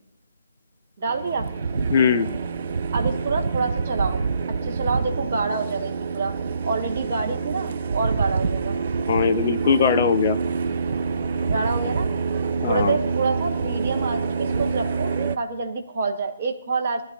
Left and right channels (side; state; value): both; inverted; correlation -0.71